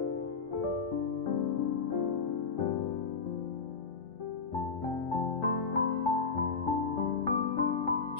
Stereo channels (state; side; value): quieter; right; 5.1 dB